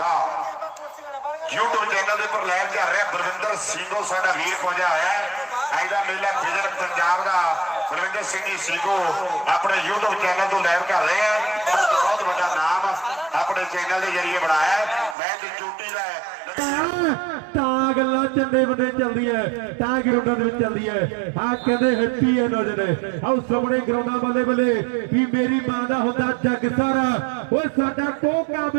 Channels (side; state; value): left; drops out; at 15.2 s